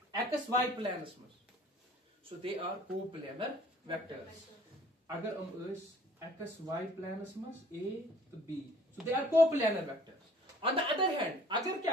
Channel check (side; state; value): both; normal; correlation 0.54